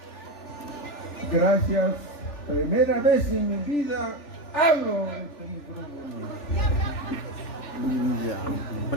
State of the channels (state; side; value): late; right; 3.4 ms